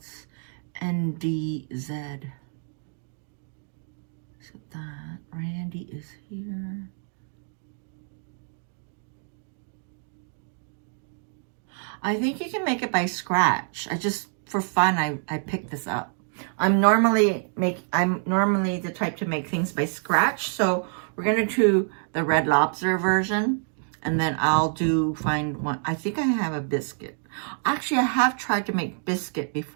NDZ. So that Randy is here. I think you can make it by scratch. I just, for fun, I picked this up. I'm normally the type to make things by scratch. So we're gonna do the Red Lobster version, and then I'll find one. I think I have a biscuit. Actually, I have tried to make biscuit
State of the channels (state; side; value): silent; left; 60 dB below the other